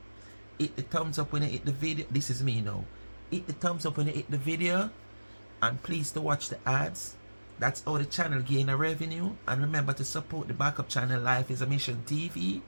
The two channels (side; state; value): both; inverted; correlation -1.00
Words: Hit the thumbs up when you hit the video. This is me now. Hit the thumbs up when you hit the video. And please to watch the ads. That's how the channel gain a revenue. And remember to support the backup channel Life is a Mission TV.